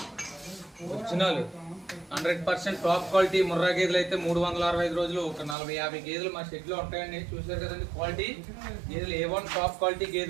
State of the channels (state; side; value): drops out; left; at 5.6 s